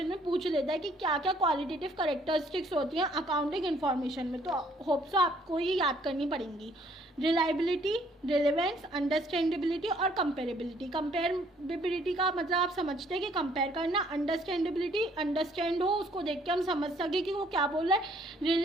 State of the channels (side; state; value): both; normal; correlation 0.63